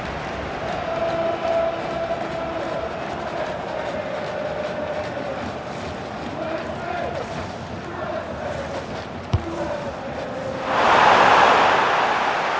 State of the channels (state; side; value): identical; both; correlation 1.00